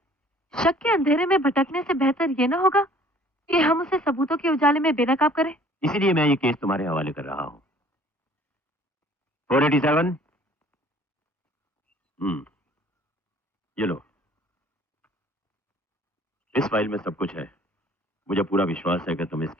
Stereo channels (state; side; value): normal; both; correlation 0.54